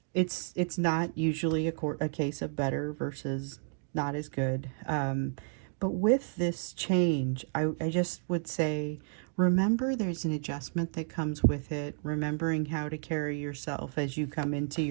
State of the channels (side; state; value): left; silent; digital silence